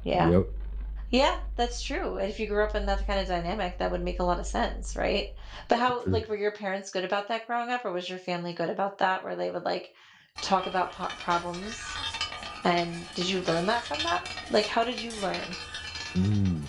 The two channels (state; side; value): identical; both; correlation 1.00